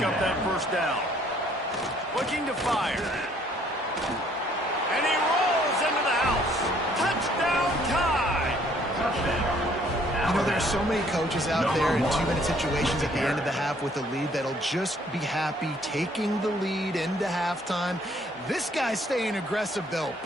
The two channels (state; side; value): normal; both; correlation 0.62